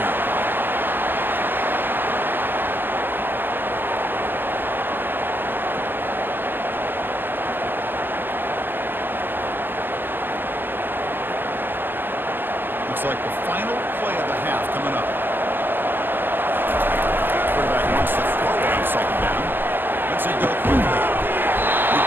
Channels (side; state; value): left; late; 0.098 ms